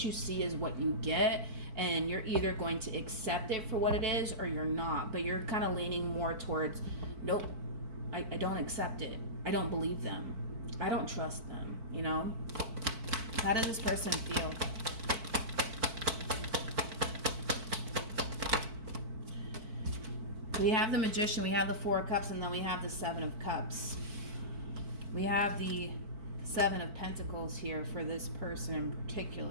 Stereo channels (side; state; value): left; late; 4.5 ms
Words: you see is what you get, and you're either going to accept it for what it is or you're not. But you're kind of leaning more towards, nope, I don't accept it. I don't believe them. I don't trust them, you know? How does this person feel? We have the Magician, we have the Four of Cups, and then we have the Seven of Cups. We have the Seven of Pentacles here for this person in